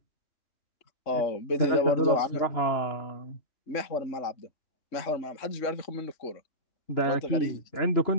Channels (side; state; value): right; late; 3.6 ms